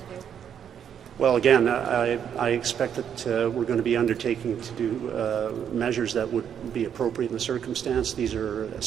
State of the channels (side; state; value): left; quieter; 8.6 dB